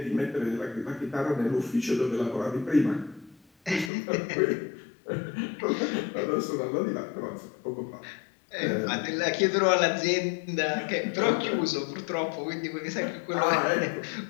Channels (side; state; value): right; drops out; at 3.9 s